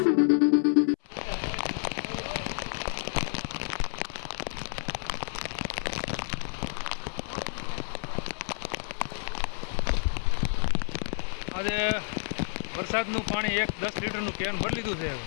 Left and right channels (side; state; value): right; silent; 58 dB below the other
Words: આજે વરસાદનું પાણી 10 લીટરનું કેન ભરી લીધું છે,